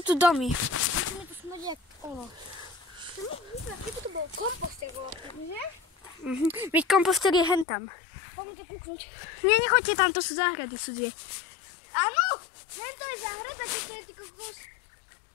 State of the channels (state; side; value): drops out; right; at 7.7 s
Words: domy? Musíme tu smrdí jak ono. To mi vyzva, keby to bol komposter, že? Veď komposter je hentam. Poďme to kúknuť. Nie, nechoďte tam, to sú záhrady cudzie. Áno, to je záhrada, čo to je ty kokos.